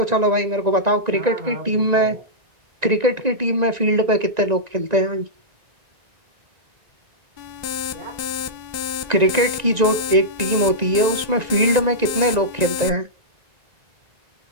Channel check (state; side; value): late; left; 1.9 ms